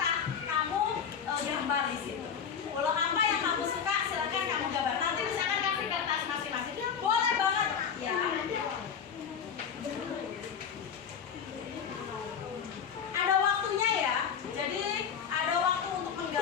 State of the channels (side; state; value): right; quieter; 7.3 dB